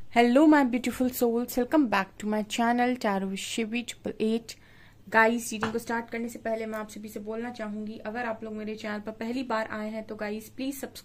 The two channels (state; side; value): identical; both; correlation 1.00